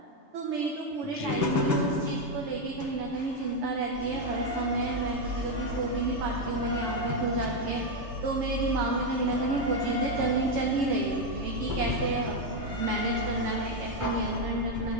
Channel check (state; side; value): late; left; 3.3 ms